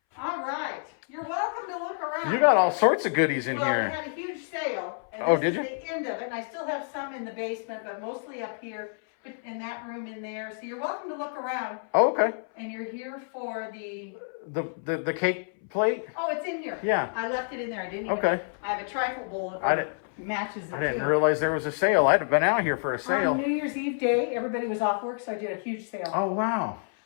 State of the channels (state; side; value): silent; right; 59 dB below the other